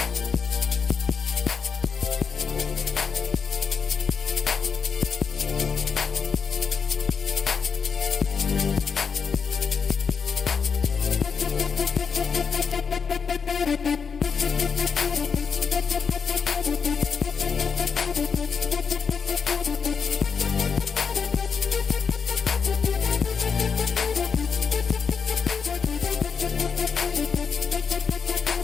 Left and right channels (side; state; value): right; quieter; 6.0 dB